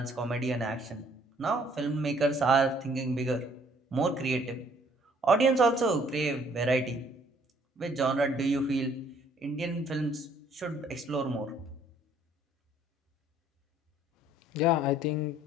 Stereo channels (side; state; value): both; normal; correlation 0.61